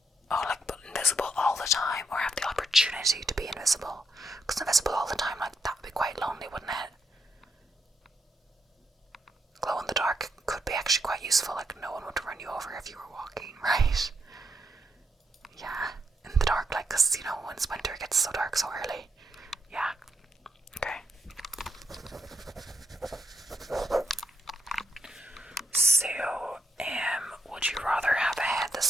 Oh, like but invisible all the time, or have the opportunity to be invisible? Because invisible all the time, like that would be quite lonely, wouldn't it? Glow in the dark could be actually quite useful, like no one would run you over if you were walking, right? Yeah, in the dark, like, because, when it's winter, it gets so dark so early. Yeah, okay. So, would you rather have a head the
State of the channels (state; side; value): normal; both; correlation 0.79